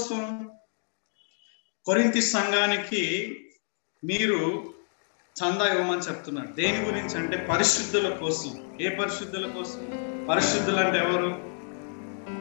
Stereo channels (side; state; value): right; silent; 59 dB below the other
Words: కొరింథీ సంఘానికి మీరు చందా ఇవ్వమని చెప్తున్నారు. దేని గురించి అంటే పరిశుద్ధుల కోసం. ఏ పరిశుద్ధుల కోసం? పరిశుద్ధులు అంటే ఎవరు?